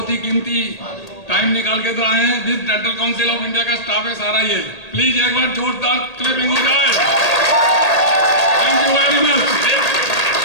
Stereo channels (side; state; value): right; late; 1.8 ms